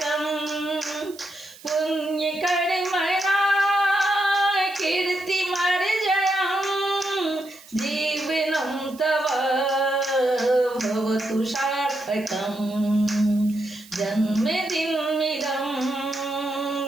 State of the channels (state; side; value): noise; right; hiss, 21 dB below the sound